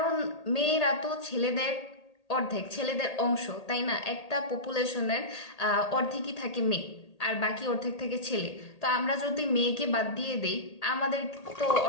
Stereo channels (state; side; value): late; right; 1.8 ms